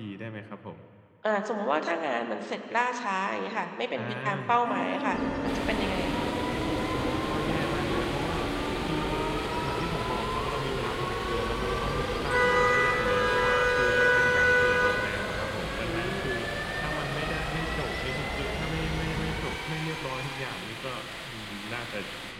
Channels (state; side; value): identical; both; correlation 1.00